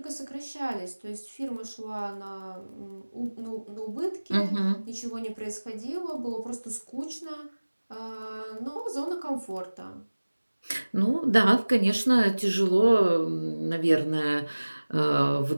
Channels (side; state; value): both; inverted; correlation -1.00